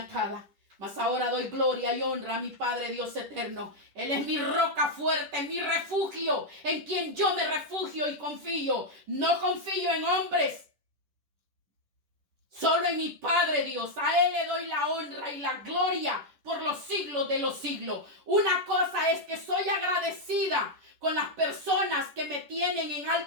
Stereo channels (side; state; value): left; late; 10 ms